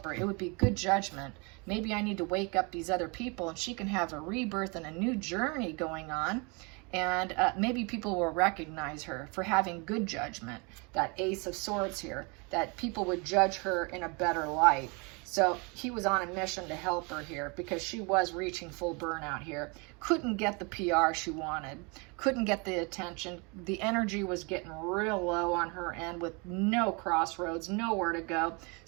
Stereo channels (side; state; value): left; quieter; 30.7 dB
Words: her. It would be good judgment. Maybe I need to wake up these other people and she can have a rebirth and a new journey going on. And maybe people will recognize her for having good judgment. That Ace of Swords here, that people would judge her in a better light. So he was on a mission to help her here because she was reaching full burnout here. Couldn't get the PR she wanted. Couldn't get the attention. The energy was getting real low on her end with no crossroads, nowhere to go.